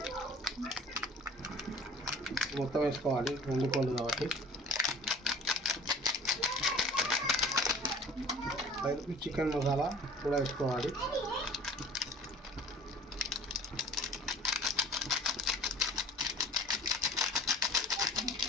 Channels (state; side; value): normal; both; correlation 0.46